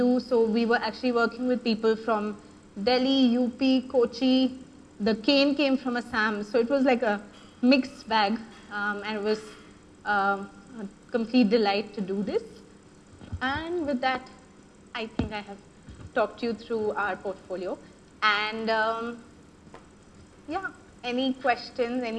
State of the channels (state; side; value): identical; both; correlation 1.00